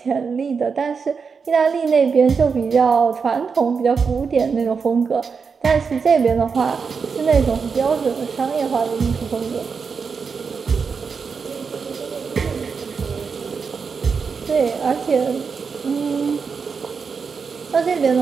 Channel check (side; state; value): left; quieter; 5.5 dB